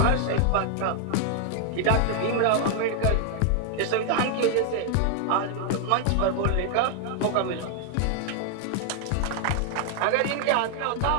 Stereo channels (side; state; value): both; different; correlation 0.00